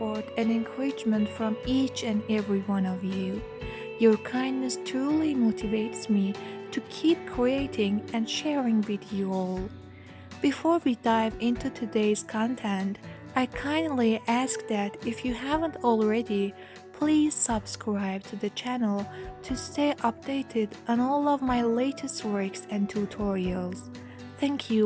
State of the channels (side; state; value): both; identical; correlation 1.00